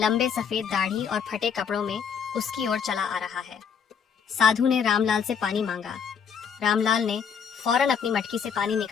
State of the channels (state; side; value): quieter; right; 7.0 dB